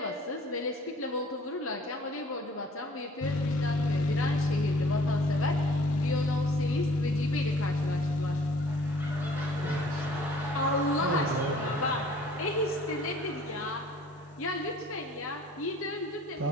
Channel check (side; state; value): both; normal; correlation 0.53